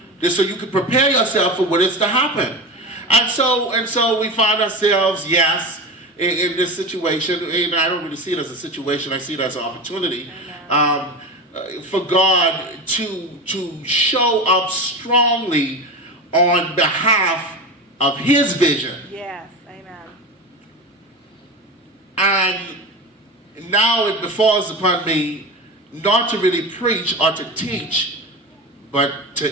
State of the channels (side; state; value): both; normal; correlation 0.25